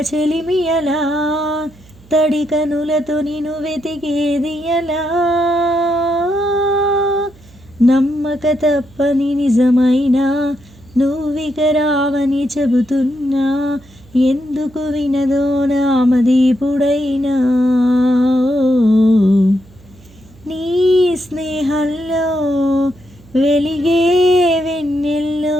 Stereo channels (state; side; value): noise; right; hum, 25 dB below the sound